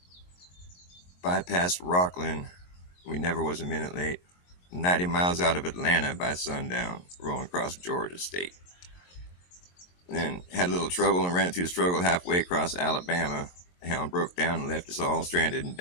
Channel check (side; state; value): right; late; 22 ms